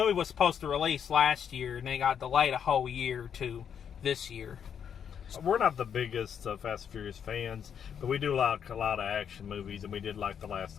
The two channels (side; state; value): right; quieter; 8.0 dB